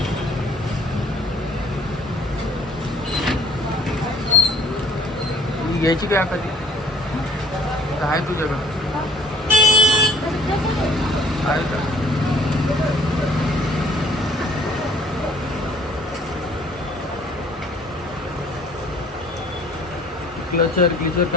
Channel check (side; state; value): both; normal; correlation 0.57